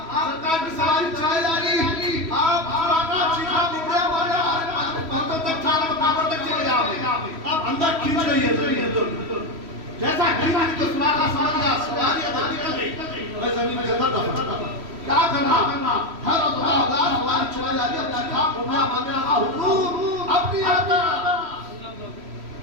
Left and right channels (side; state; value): left; late; 3.1 ms